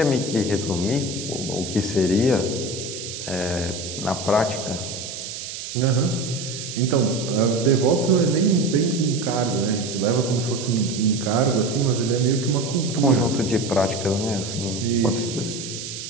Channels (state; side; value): noise; right; hiss, 8 dB below the sound